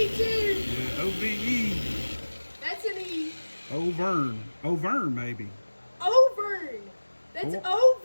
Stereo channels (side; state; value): both; inverted; correlation -1.00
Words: too. Yeah, O-V-E. That's an E. Overn maybe. Overn. That's